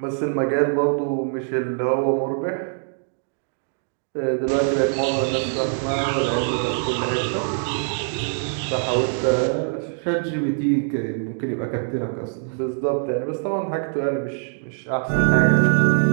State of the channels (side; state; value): left; silent; digital silence